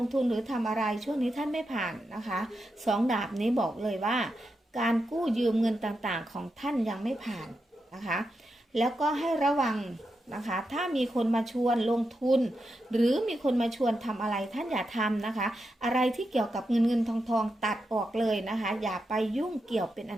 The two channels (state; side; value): normal; both; correlation 0.87